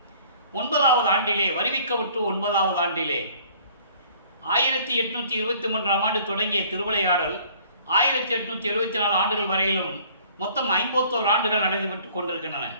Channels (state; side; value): inverted; both; correlation -0.54